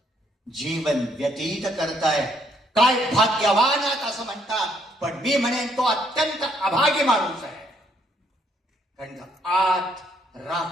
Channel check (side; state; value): both; normal; correlation 0.70